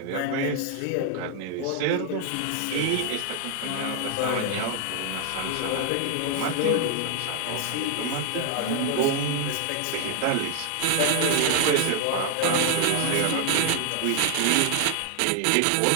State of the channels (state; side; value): different; both; correlation 0.00